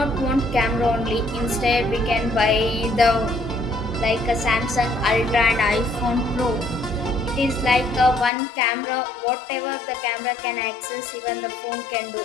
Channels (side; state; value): right; drops out; at 8.3 s